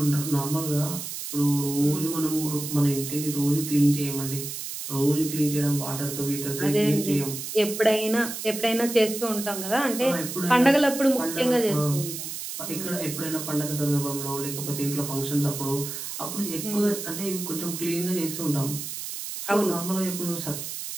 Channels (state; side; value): noise; right; hiss, 7 dB below the sound